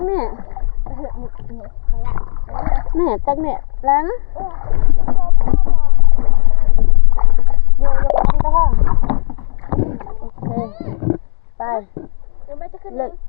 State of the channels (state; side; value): silent; right; digital silence